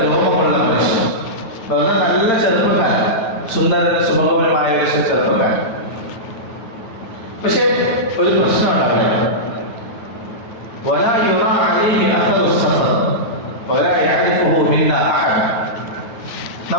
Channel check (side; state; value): right; late; 9.4 ms